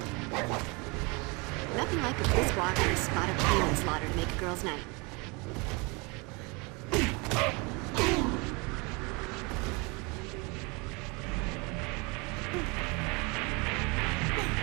Nothing like a brisk walk and a spot of human slaughter to make a girl's night.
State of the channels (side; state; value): left; quieter; 28.6 dB